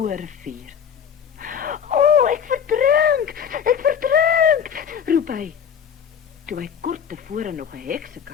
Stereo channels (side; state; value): right; quieter; 7.8 dB